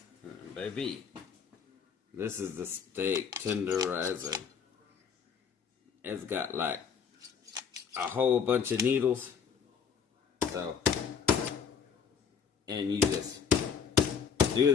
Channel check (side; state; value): right; quieter; 6.9 dB